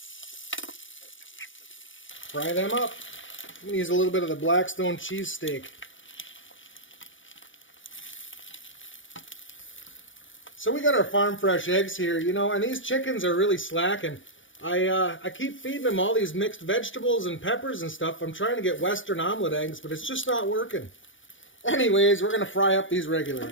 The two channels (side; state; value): right; late; 0.56 ms